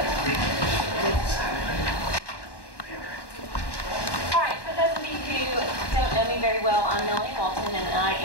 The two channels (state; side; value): late; right; 1.1 ms